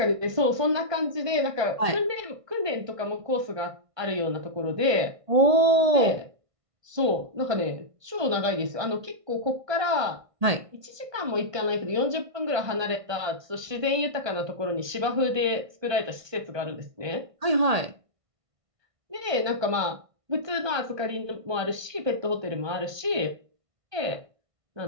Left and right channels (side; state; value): left; late; 1.6 ms